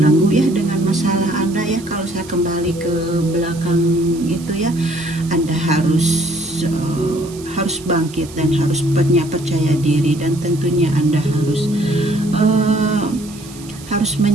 ya dengan masalah Anda ya. Kalau saya kembali ke belakang gitu ya, Anda harus bangkit dan harus punya percaya diri, dan tentunya Anda harus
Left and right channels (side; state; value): right; noise; hiss, 18 dB below the sound